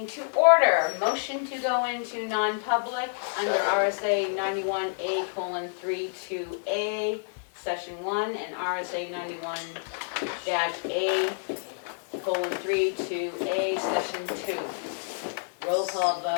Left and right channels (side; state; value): right; silent; 56 dB below the other